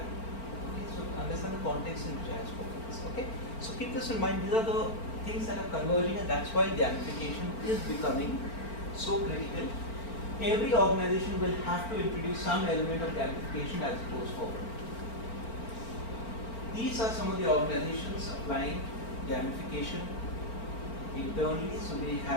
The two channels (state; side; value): late; right; 4.4 ms